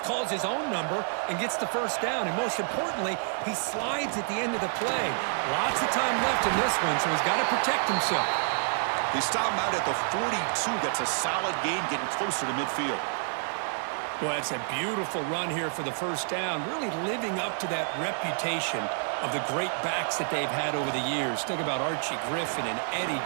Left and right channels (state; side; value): silent; left; digital silence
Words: calls his own number and gets the first down. And most importantly, he slides at the end of the play. Lots of time left in this one, so he's got to protect himself. They stop him out at the 42. That's a solid gain, getting closer to midfield. Well, it's a beautiful run here for the first down, really living up to that reputation of the great backs that they've had over the years. Think about Archie Griffin and Eddie